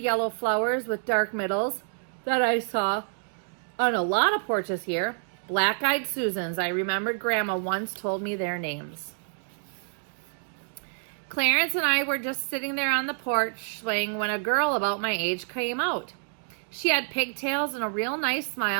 flowers with dark middles that I saw on a lot of porches here. Black-eyed Susans. I remembered Grandma once told me their names. Clarence and I were just sitting there on the porch swing when a girl about my age came out. She had pigtails and a real nice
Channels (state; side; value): silent; left; digital silence